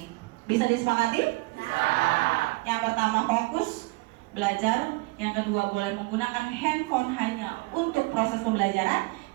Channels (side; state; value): left; quieter; 24.9 dB